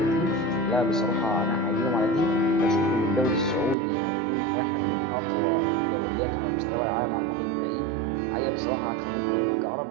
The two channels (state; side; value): drops out; left; at 3.8 s